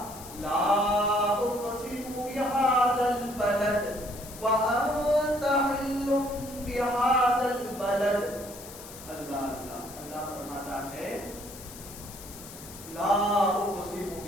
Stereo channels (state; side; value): noise; left; hiss, 15 dB below the sound